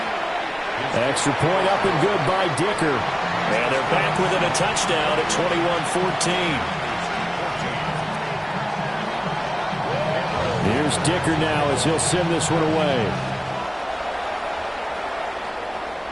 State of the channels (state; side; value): identical; both; correlation 1.00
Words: Extra point up and good by Dicker. And they're back within a touchdown at 21-14. Here's Dicker now as he'll send this one away.